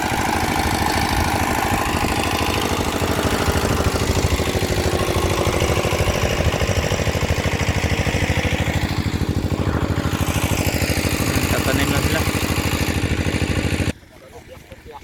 Tatanim na sila.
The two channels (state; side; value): identical; both; correlation 1.00